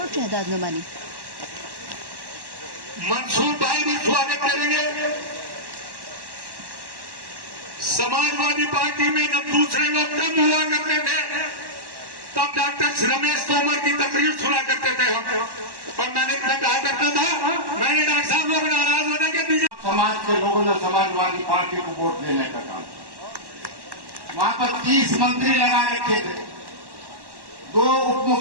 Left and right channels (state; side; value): late; left; 1.1 ms